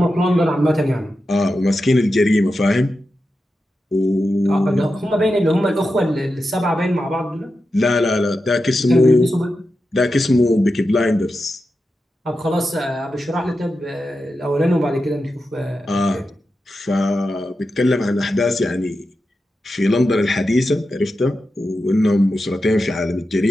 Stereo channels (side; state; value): both; normal; correlation 0.90